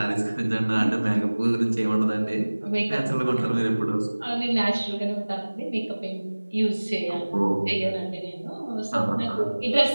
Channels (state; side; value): inverted; both; correlation -1.00